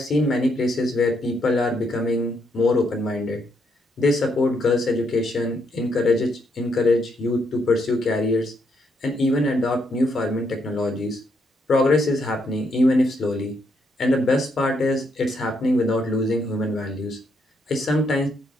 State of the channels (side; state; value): both; normal; correlation 0.76